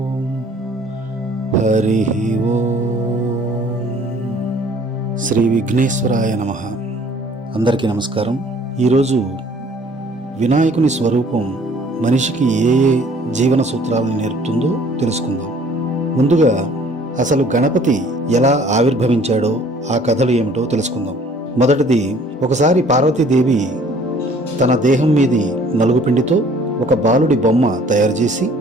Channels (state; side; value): normal; both; correlation 0.55